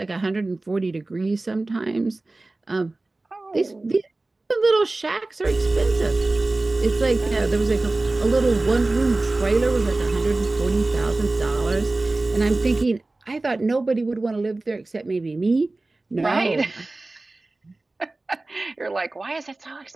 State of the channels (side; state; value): left; quieter; 3.1 dB